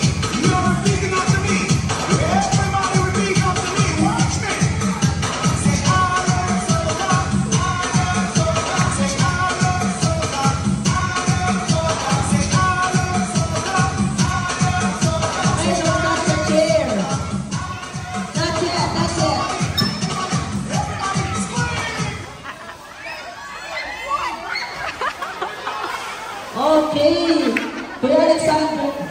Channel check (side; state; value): both; identical; correlation 1.00